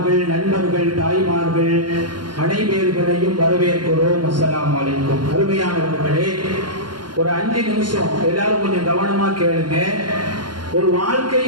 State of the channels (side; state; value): left; late; 0.71 ms